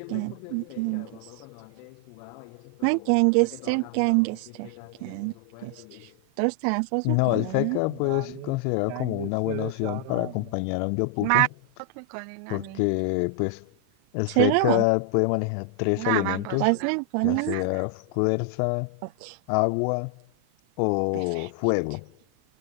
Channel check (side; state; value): both; different; correlation 0.00